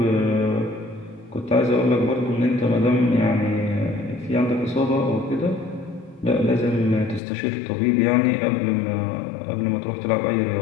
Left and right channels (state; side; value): drops out; right; at 7.2 s